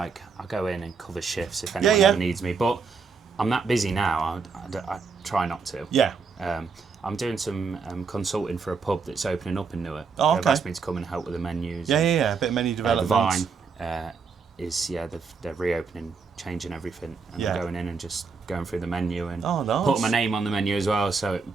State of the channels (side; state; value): left; quieter; 5.1 dB